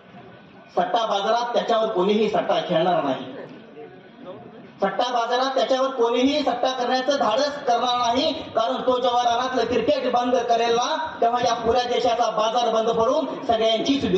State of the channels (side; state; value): both; identical; correlation 1.00